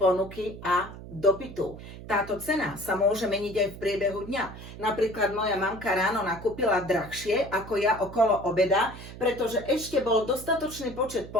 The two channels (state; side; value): noise; right; hum, 14 dB below the sound